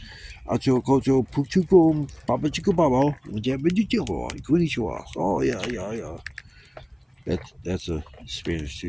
ocho, ocho, puchuco, papa chico babo, konnichiwa. Oh yeah. That's a Spanish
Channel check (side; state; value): both; identical; correlation 1.00